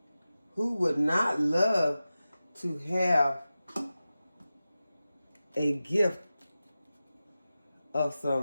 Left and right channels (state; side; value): inverted; both; correlation -0.94